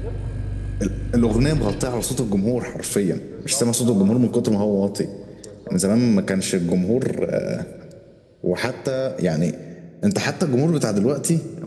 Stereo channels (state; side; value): identical; both; correlation 1.00